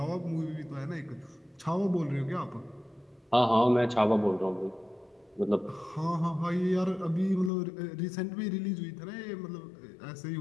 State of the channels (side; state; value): right; drops out; at 7.5 s